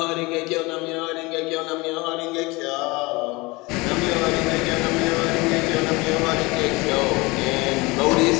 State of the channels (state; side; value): quieter; right; 24.0 dB